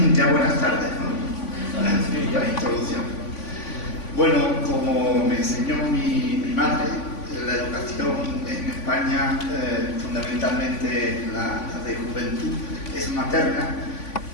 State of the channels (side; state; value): right; late; 3.5 ms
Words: Ya buenas tardes, ¿no? La introducción. Bueno, como me enseñó mi madre, la educación en España, fundamentalmente la de juventud, es materna,